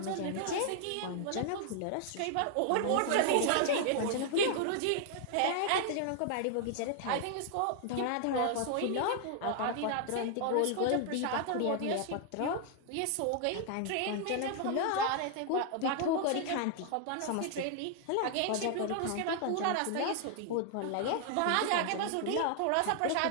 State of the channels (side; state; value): both; different; correlation 0.00